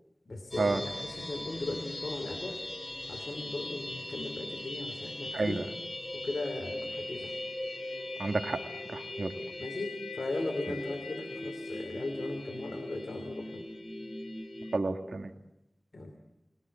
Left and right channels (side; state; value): both; normal; correlation 0.94